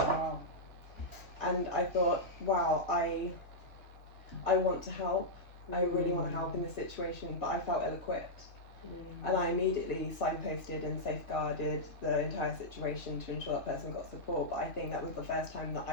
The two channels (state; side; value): late; right; 2.0 ms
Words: And I thought, wow, I want to help. I really want to help in this situation, but I felt ill-equipped. And I immediately signposted and safeguarded the entire situation to ensure that person got support. But I think that was the first time that